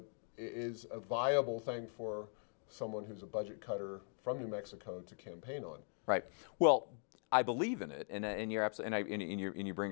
is a viable thing for someone who's a budget cutter from New Mexico to campaign on. Right. Well, I believe in it, and you're absolutely, and you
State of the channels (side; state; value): right; silent; 51 dB below the other